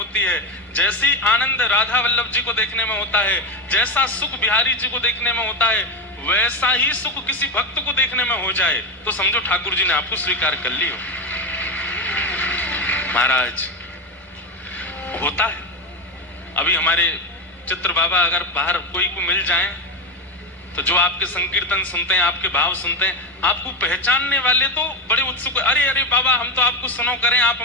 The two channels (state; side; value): normal; both; correlation 0.12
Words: है, जैसी आनंद राधा वल्लभ जी को देखने में होता है, जैसा सुख बिहारी जी को देखने में होता है, वैसा ही सुख किसी भक्त को देखने में हो जाए तो समझो ठाकुर जी ने आपको स्वीकार कर लियो। महाराज होता है। अभी हमारे चित्र बाबा अगर बाहर कोई को मिल जाए तो जो आपके संकीर्तन सुनते हैं, आपके भाव सुनते हैं, आपको पहचानने वाले तो बड़े उत्सुक, अरे अरे बाबा हम तो आपको सुनो करें, आप